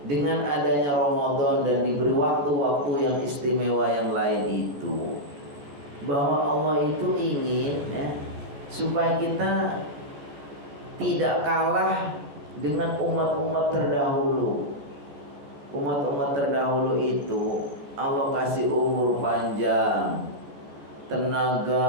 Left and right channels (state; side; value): late; left; 14 ms